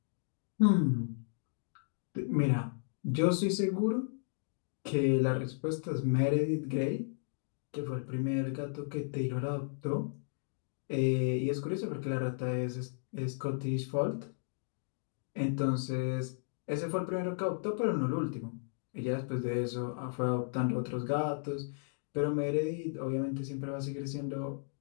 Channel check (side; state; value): right; silent; digital silence